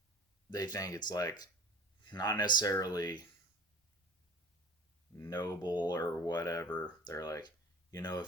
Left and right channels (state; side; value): normal; both; correlation 0.43